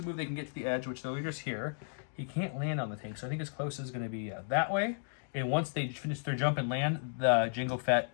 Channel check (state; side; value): silent; right; digital silence